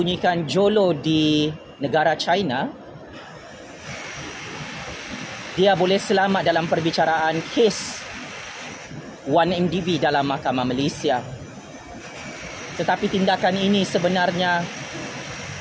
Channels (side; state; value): both; identical; correlation 1.00